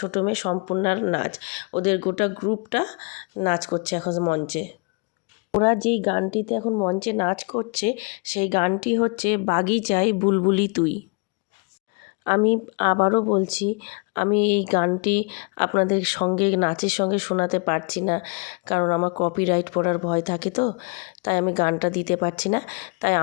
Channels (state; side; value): quieter; right; 32.7 dB